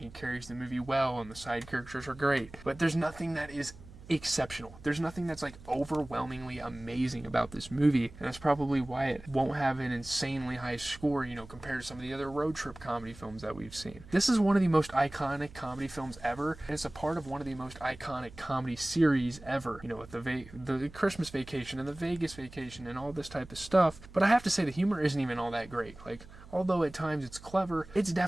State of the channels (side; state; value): right; noise; hum, 19 dB below the sound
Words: carries the movie well, and the side characters are great. But there's nothing that is exceptional. There's nothing that's like overwhelmingly amazing about this movie, and that's probably why it won't have an insanely high score, you know, compared to some of the other road trip comedy films that we've seen. This is one of the most iconic comedy films ever, and it's a part of one of the most iconic comedy series ever, you know, with the Christmas Vacation and the Vegas Vacation and all this type of stuff. But I have to say the humor isn't even all that great. Like, although at times it's clever, it's